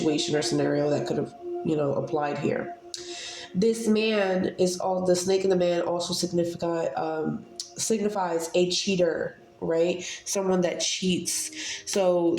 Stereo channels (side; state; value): both; identical; correlation 1.00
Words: or scenario that could have, applied here. This man is all the snake and the man also signifies a cheater, right? Someone that cheats. So